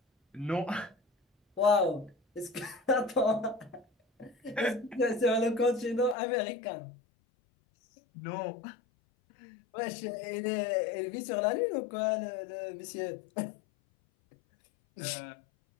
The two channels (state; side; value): drops out; right; at 6.2 s